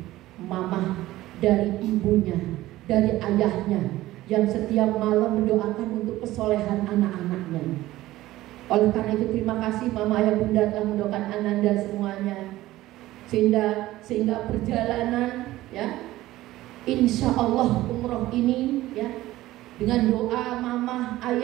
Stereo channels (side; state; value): left; quieter; 16.3 dB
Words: mama, dari ibunya, dari ayahnya, yang setiap malam mendoakan untuk kesolehan anak-anaknya. Oleh karena itu terima kasih mama, ayah, bunda telah mendoakan Ananda semuanya, sehingga perjalanan ya insya Allah umroh ini ya dengan doa mama,